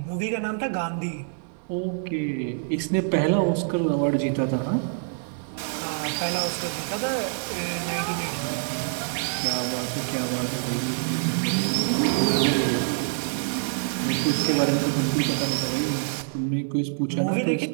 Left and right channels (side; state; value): left; silent; digital silence